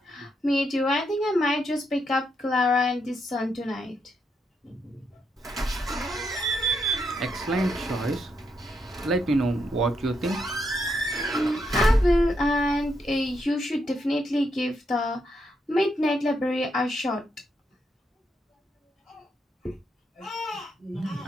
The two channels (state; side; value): normal; both; correlation 0.80